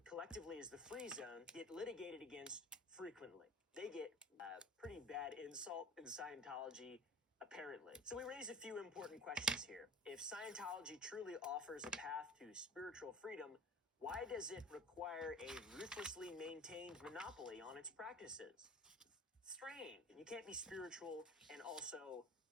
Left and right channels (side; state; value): both; normal; correlation 0.40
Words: collectively as the Free Zone, get litigated against frequently. They get a pretty bad insult in Scientology, apparently. So we raise a few important questions here. If Scientology truly offers a path to spiritual freedom, why does it require a ruthlessly maintained monopoly on its practices? Strange. You can't be spiritual and also